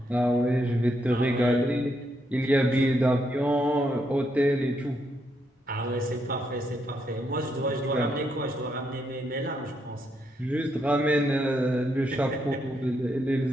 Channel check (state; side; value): normal; both; correlation 0.78